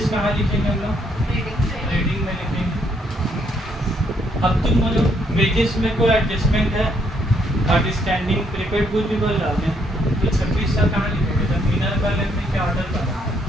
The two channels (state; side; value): normal; both; correlation 0.71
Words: कहाँ लिखेंगे हम लोग रीडिंग में लिखेंगे। अब तुम बोलो वेजेस में कोई एडजस्टमेंट है, आउटस्टैंडिंग प्रीपेड गुड भी बोल रहा हूँ, तो 2600 कहाँ लिखेंगे, जब इनर कॉलम में क्या आउटर कॉलम,